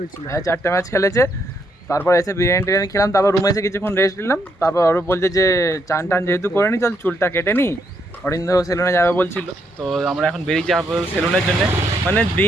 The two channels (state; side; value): normal; both; correlation 0.76